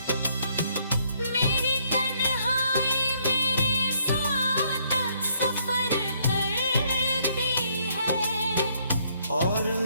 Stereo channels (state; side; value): inverted; both; correlation -0.69